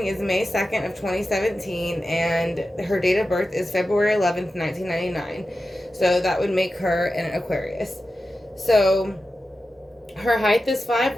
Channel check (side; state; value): both; normal; correlation 0.92